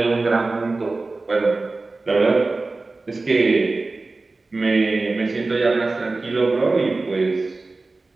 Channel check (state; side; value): quieter; left; 3.5 dB